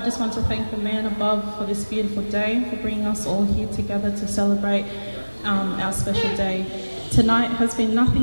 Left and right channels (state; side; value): inverted; both; correlation -1.00